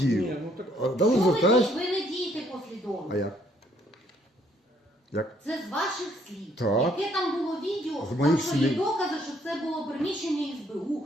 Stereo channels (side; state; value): both; normal; correlation 0.67